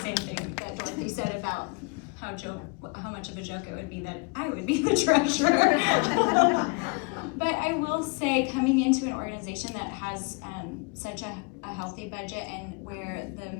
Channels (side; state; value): right; quieter; 33.1 dB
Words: same thing that Dorothy said about how much of a joke it would be that I would be the treasurer. But I will say, coming into an organization that has such a healthy budget and where the